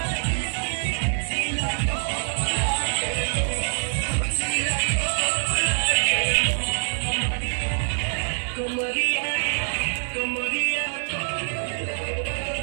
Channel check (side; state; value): left; silent; 58 dB below the other